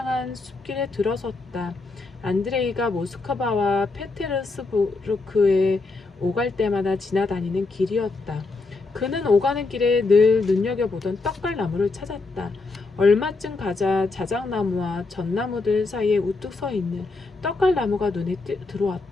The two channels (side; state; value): right; quieter; 3.6 dB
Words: 숲길에 들어섰다. 안드레이가 모스크바와 페테르스부르크에 오갈 때마다 지나다니는 길이었다. 그는 오가는 길에 늘 눈여겨보던 떡갈나무를 찾았다. 얼마쯤 가자 자작나무와 전나무들 사이에 우뚝 서 있는 떡갈나무가 눈에